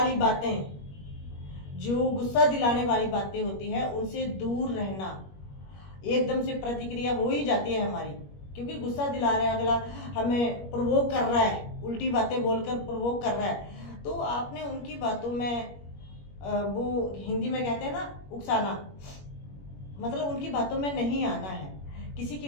बातें, जो गुस्सा दिलाने वाली बातें होती है, उनसे दूर रहना। एकदम से प्रतिक्रिया हो ही जाती है हमारी, क्योंकि गुस्सा दिला रहा है अगला, हमें प्रोवोक कर रहा है, उल्टी बातें बोलकर प्रोवोक कर रहा है, तो आपने उनकी बातों में वो हिंदी में कहते हैं ना उकसाना, मतलब उनकी बातों में नहीं आना है। किसी की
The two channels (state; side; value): late; right; 21 ms